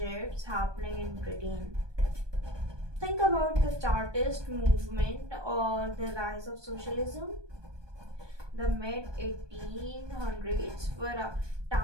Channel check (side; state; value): left; late; 1.2 ms